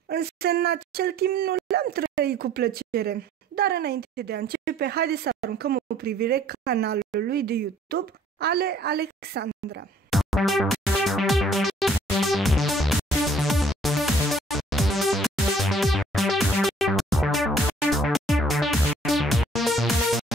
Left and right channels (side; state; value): both; normal; correlation 0.58